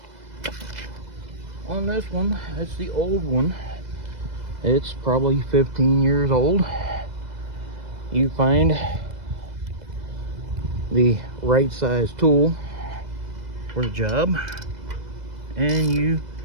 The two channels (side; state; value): left; late; 2.0 ms